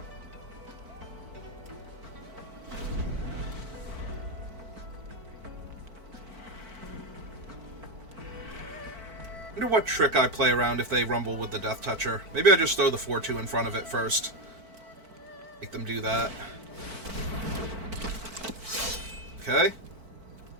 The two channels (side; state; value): left; late; 4.5 ms